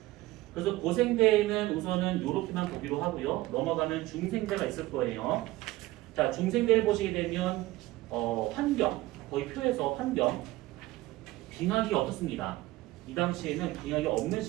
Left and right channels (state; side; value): quieter; left; 18.1 dB